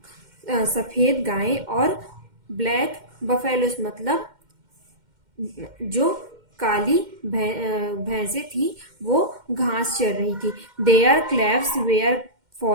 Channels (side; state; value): left; late; 2.1 ms